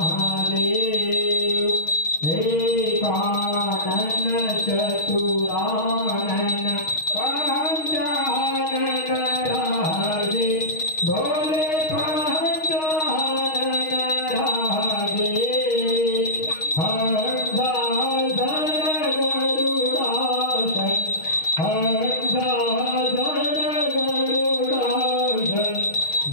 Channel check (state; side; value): late; right; 6.4 ms